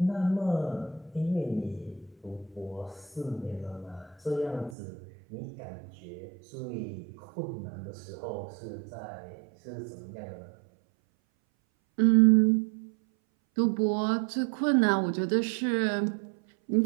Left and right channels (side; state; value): left; drops out; at 4.8 s